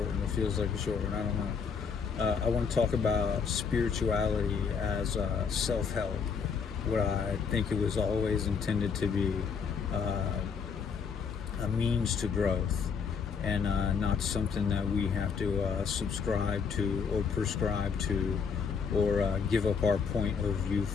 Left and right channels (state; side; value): quieter; right; 6.0 dB